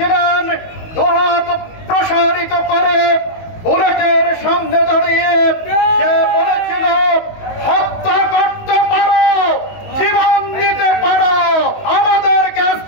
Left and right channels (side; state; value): right; late; 19 ms